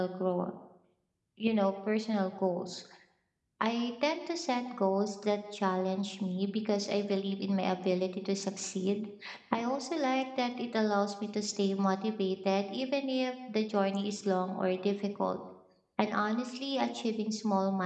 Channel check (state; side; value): identical; both; correlation 1.00